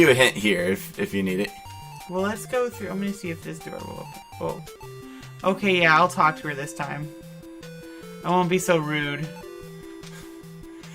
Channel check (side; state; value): both; identical; correlation 1.00